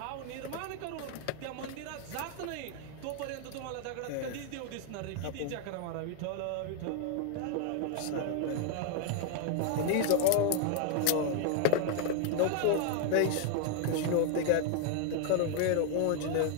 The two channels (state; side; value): different; both; correlation 0.00